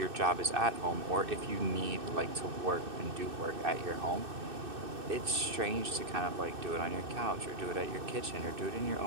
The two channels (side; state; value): left; late; 2.6 ms